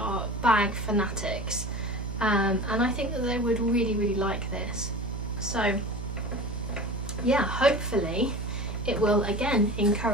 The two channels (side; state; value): right; noise; hum, 6 dB below the sound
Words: bag fanatics, and I think that they would really, really like this. So yeah, hopefully it will again